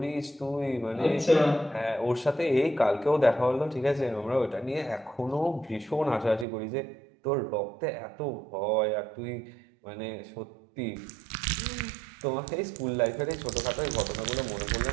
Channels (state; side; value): drops out; left; at 6.5 s